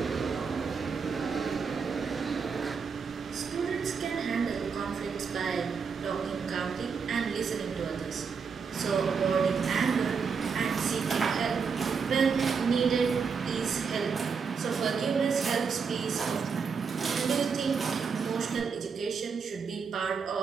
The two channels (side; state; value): left; quieter; 5.7 dB